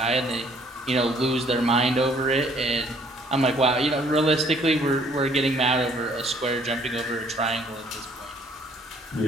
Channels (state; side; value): normal; both; correlation 0.61